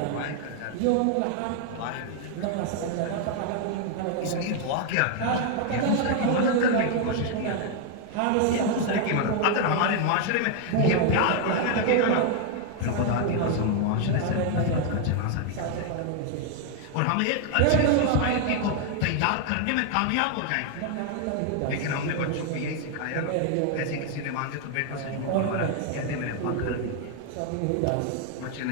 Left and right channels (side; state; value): both; different; correlation 0.00